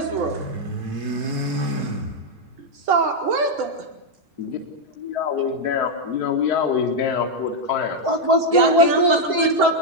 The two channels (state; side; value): late; left; 4.7 ms